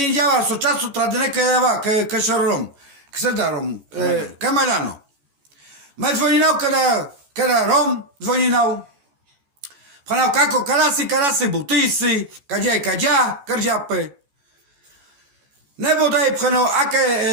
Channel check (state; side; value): late; left; 14 ms